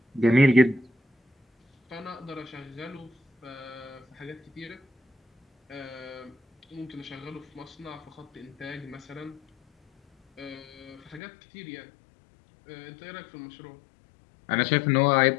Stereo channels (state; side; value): drops out; right; at 11.2 s